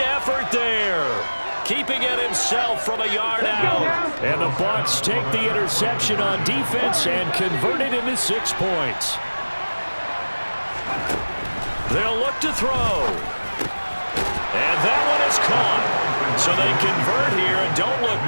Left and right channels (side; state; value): both; inverted; correlation -1.00